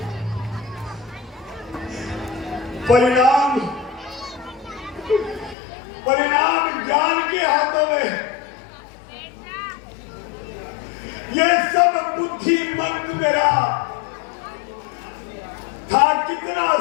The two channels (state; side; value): drops out; right; at 5.6 s